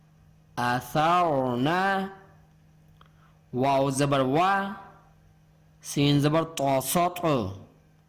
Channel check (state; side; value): identical; both; correlation 1.00